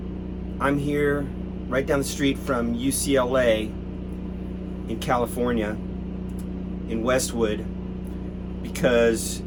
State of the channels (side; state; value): both; identical; correlation 1.00